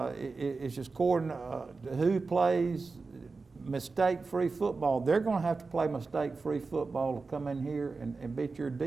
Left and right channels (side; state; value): left; quieter; 4.1 dB